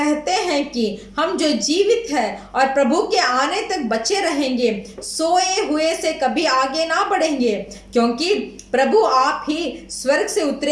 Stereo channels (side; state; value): both; identical; correlation 1.00